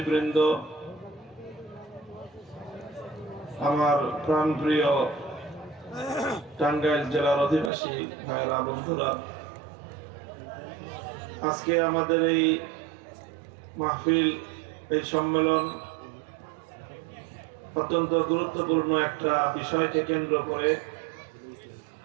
আমার প্রাণপ্রিয় টাঙ্গাইল জেলার অধিবাসী ভাইরা, বন্ধুরা, আজকে আমাদের এই মাহফিল, এই সম্মেলন অত্যন্ত গুরুত্বপূর্ণ একটা বিষয়কে কেন্দ্র করে।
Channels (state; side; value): drops out; left; at 7.7 s